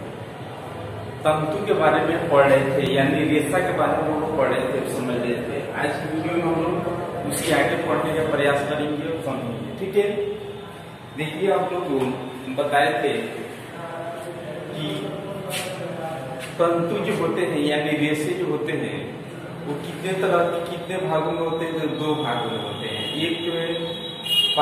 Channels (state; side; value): identical; both; correlation 1.00